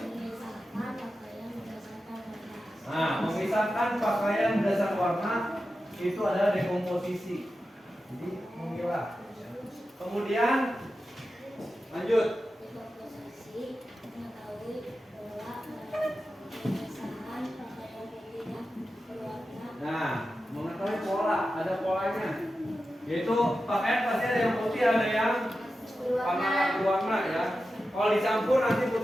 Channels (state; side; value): normal; both; correlation 0.92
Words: Nah, memisahkan pakaian berdasarkan warna itu adalah dekomposisi. Jadi memilah. Kemudian lanjut. Nah, mengetahui pola, ada polanya. Yaitu pakaian pasti ada yang putih, ada yang warna ya. Kalau dicampur nanti